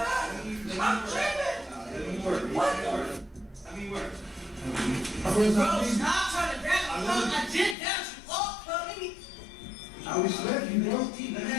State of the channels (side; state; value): right; drops out; at 7.8 s